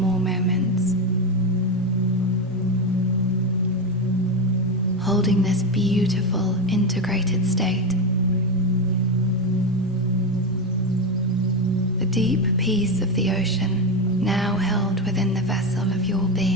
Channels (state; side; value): normal; both; correlation 0.12